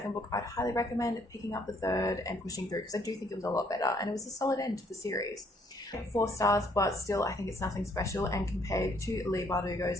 book, I'd highly recommend picking up the third and pushing through, because I do think it was a lot better and it was a solid end to the series. 4 stars, but still I think it's nothing special, and compared to Leigh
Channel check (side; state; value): both; normal; correlation 0.66